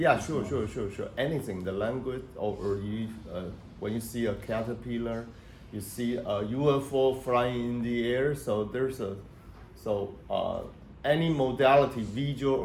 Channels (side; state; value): both; identical; correlation 1.00